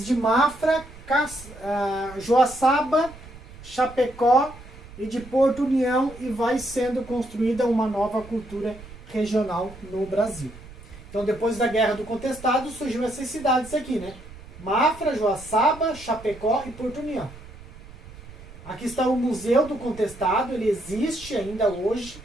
de Mafra, Joaçaba, Chapecó e de Porto União, e vai sendo construída uma nova cultura regional no Brasil. Então, depois da Guerra do Contestado, surgiu essas cidades aqui, né? Mafra, Joaçaba, Chapecó e Porto União. Aqui está o Museu do Contestado, ele existe ainda hoje,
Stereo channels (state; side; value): noise; right; rumble, 18 dB below the sound